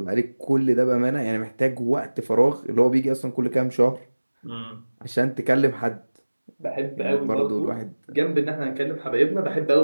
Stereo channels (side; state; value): both; inverted; correlation -1.00